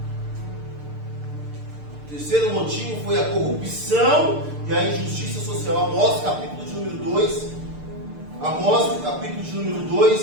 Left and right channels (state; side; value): late; left; 6.7 ms